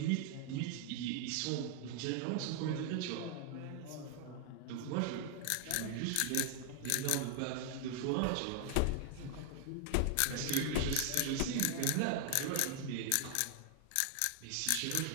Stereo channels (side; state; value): both; different; correlation 0.00